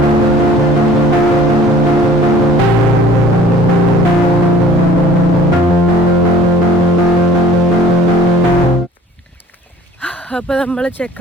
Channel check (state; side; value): normal; both; correlation 0.51